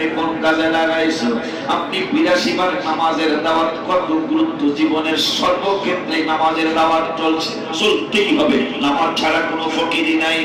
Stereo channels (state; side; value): identical; both; correlation 1.00